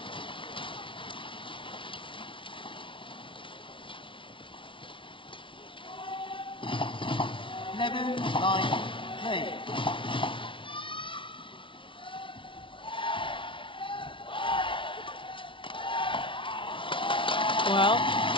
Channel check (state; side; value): late; right; 0.25 ms